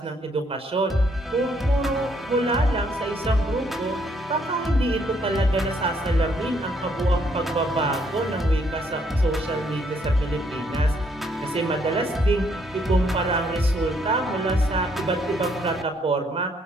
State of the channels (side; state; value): both; normal; correlation 0.70